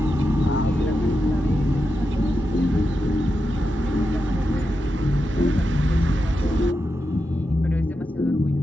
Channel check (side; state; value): both; normal; correlation 0.88